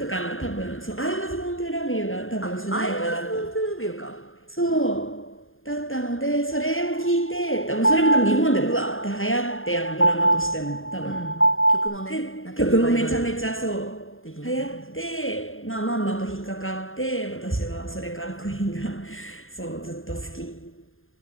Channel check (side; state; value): right; late; 0.59 ms